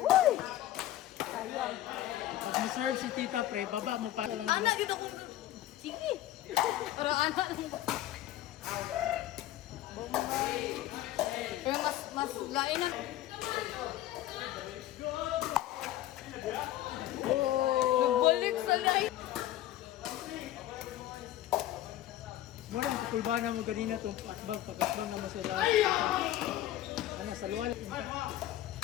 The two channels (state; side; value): quieter; right; 13.9 dB